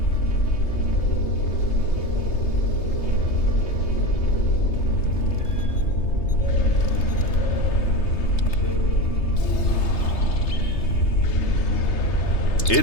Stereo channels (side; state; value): right; late; 3.3 ms